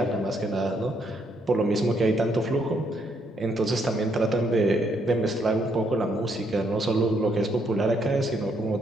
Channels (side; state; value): both; normal; correlation 0.73